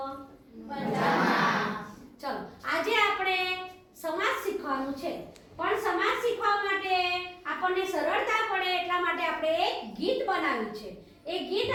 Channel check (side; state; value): both; identical; correlation 1.00